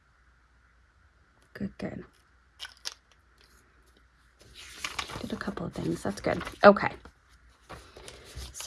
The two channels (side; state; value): both; identical; correlation 1.00